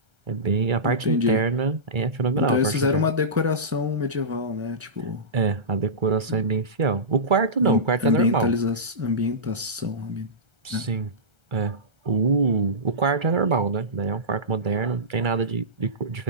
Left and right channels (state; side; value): late; left; 1.3 ms